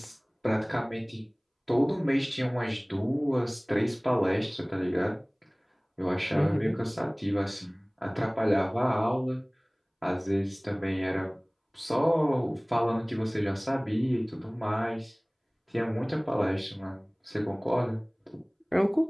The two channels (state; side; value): identical; both; correlation 1.00